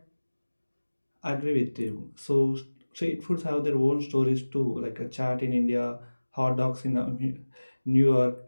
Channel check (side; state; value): both; inverted; correlation -1.00